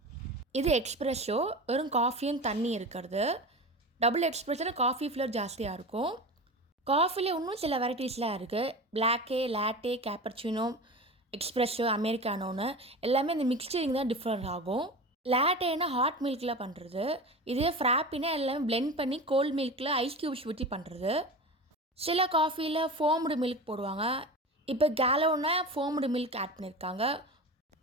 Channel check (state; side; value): normal; both; correlation 0.30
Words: இது எக்ஸ்ப்ரெஷோ, வெறும் காஃபியும் தண்ணி இருக்கிறது. டபுள் எக்ஸ்ப்ரெஷோவில் காஃபி ஃப்ளேவர் ஜாஸ்தியாக இருக்கும். காஃபியில் இன்னும் சில வெரைட்டிஸ்லாம் இருக்குது. பிளாக்கே, லாட்டே, கேப்பர்ச்சினோ, எக்ஸ்ப்ரெஷோ, அமெரிக்கானோன்னு எல்லாமே இந்த மிக்சரிங் தான் டிஃப்ரெண்ட் ஆகும். லாட்டேனா ஹாட் மில்கில் பண்ணுறது. இதே ஃப்ராப்பினா எல்லாமே பிளெண்ட் பண்ணி கோல்ட் மில்கில் ஐஸ் க்யூப்ஸ் ஊற்றி பண்ணுறது. சில காஃபியில் ஃபோம்டு மில்க் போடுவாங்க. இப்போ கேலோனா ஃபோம்டு மில்க் ஆட் பண்ணியிருக்காங்க.